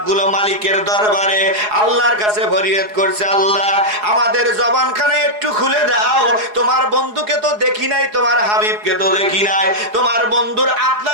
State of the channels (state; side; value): late; left; 4.8 ms